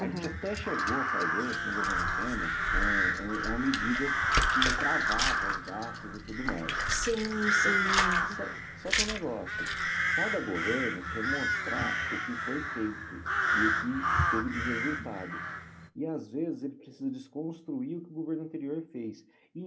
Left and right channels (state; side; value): identical; both; correlation 1.00